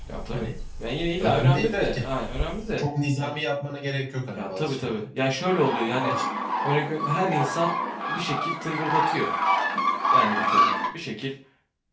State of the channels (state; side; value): identical; both; correlation 1.00